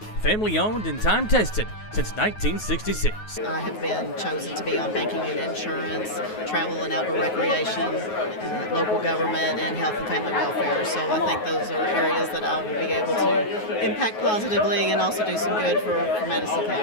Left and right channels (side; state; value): right; late; 9.4 ms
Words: Family owned and time tested since 1966. I have been chosen to be on banking and insurance, travel and outdoor recreation, local government, and health and family welfare. So I think those are areas that I will be able to impact positively and also do some good for Madison